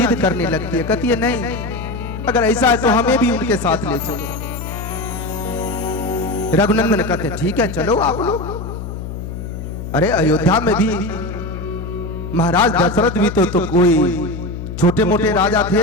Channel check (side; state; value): left; noise; hum, 8 dB below the sound